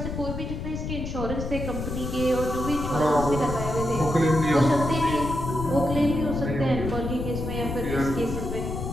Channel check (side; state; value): left; noise; rumble, 5 dB below the sound